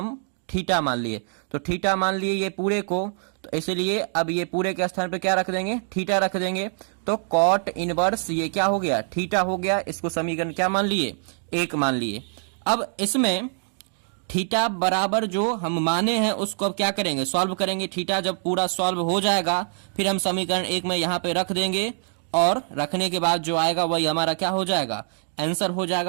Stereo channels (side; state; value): left; silent; 62 dB below the other